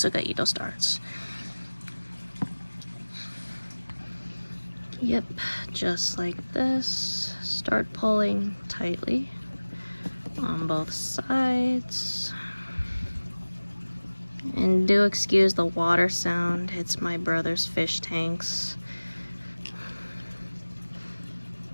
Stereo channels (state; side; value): inverted; both; correlation -1.00